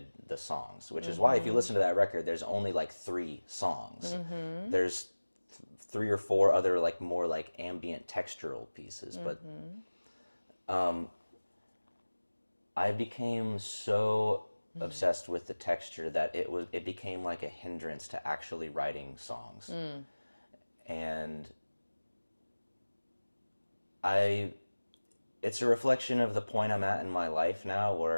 the songs, which is why if you Mm-hmm. listen to that record, there's only like 3 songs. Mm-hmm. There's 3 or 4 other like more like ambient textural pieces, but Mm-hmm. um, I became so Mm. obsessed with the texture that it became like a hindrance to actually writing songs. Mm. And I it's a reflection of the point I'm at in my life now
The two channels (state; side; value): inverted; both; correlation -1.00